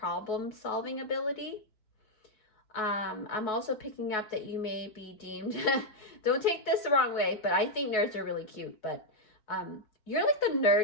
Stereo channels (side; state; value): right; late; 4.6 ms